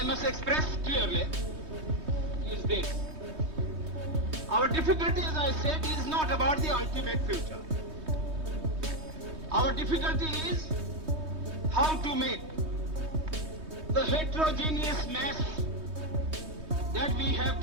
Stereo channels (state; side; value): late; left; 3.2 ms